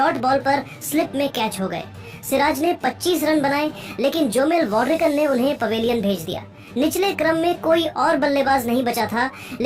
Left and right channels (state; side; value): identical; both; correlation 1.00